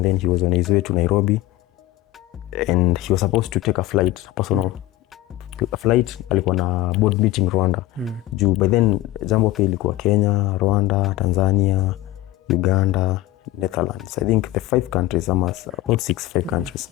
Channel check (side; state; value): right; quieter; 16.6 dB